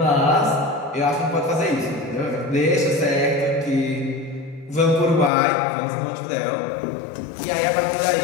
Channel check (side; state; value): right; drops out; at 5.3 s